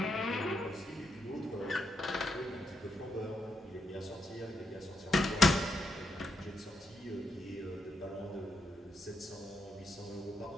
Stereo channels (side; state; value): both; normal; correlation 0.81